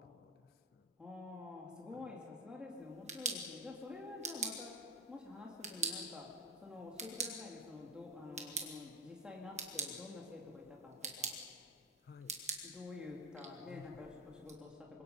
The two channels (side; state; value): both; normal; correlation 0.19